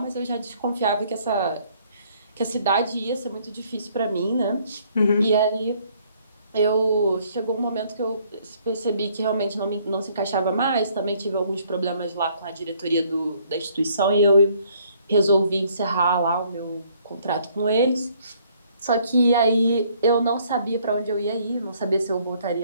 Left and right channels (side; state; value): both; inverted; correlation -0.64